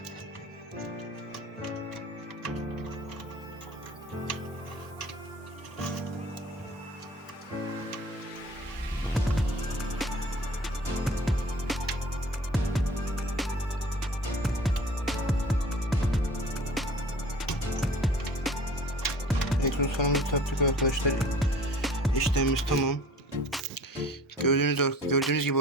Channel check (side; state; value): both; normal; correlation 0.46